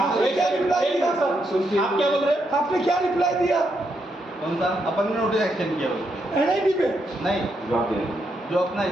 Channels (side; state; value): both; normal; correlation 0.79